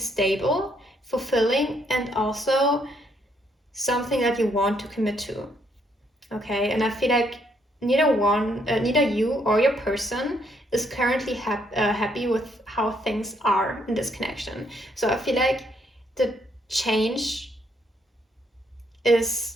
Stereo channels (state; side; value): normal; both; correlation 0.72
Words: fulfilling, and also something that you want to commit to. Okay, and I feel like neither you or your person is currently happy with how things are in this connection. So I feel like the change is